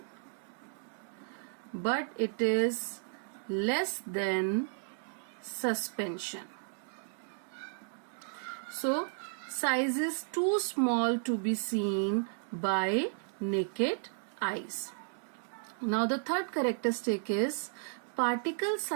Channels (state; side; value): silent; left; digital silence